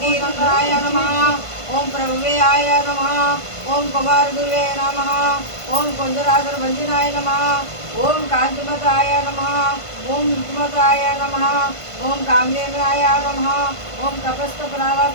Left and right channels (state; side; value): late; right; 1.5 ms